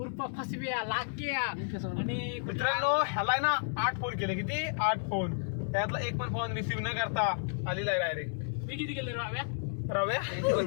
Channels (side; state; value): right; silent; digital silence